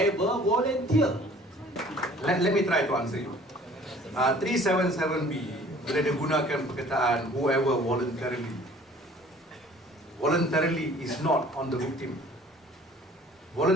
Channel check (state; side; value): normal; both; correlation 0.52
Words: volunteer. Let me try to answer you. 377B bila dia gunakan perkataan whoever voluntarily. Voluntarily is not on the victim.